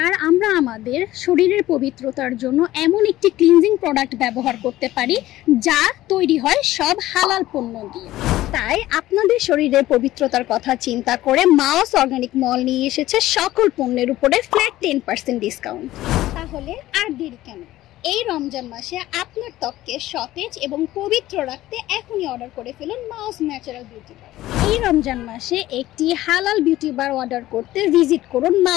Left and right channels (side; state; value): right; quieter; 15.5 dB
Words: আর আমরা আমাদের শরীরের পবিত্রতার জন্য এমন একটি ক্লিনজিং প্রোডাক্ট ব্যবহার করতে পারি যা তৈরি হয় সব হালাল পণ্য দিয়ে। তাই আপনাদের শরীরের পবিত্রতার কথা চিন্তা করে মাওস অর্গানিক মল নিয়ে এসেছে সকল পণ্যের উপরে ফ্ল্যাট 10% ডিসকাউন্ট। তাহলে আর দেরি কেন? এই রমজান মাসে আপনার ত্বককে সতেজ এবং পবিত্র রাখতে এখনই অর্ডার করে ফেলুন মাওস ন্যাচারাল বিউটি বার। এই রমজান মাসে একটি হালাল বিউটি বার অর্ডার করতে ভিজিট করুন